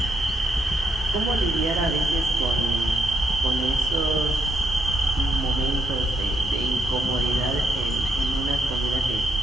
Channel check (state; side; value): normal; both; correlation 0.77